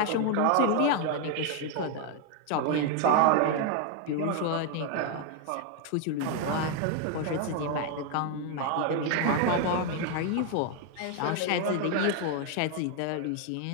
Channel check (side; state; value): both; different; correlation 0.01